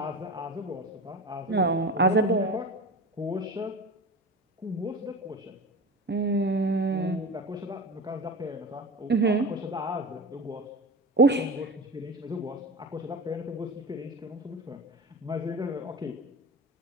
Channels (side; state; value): both; normal; correlation 0.29